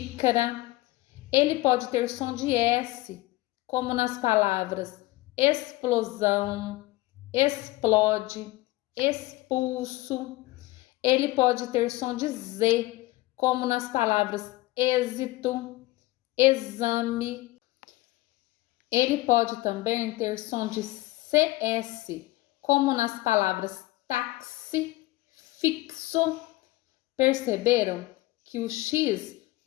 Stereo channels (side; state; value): right; quieter; 19.2 dB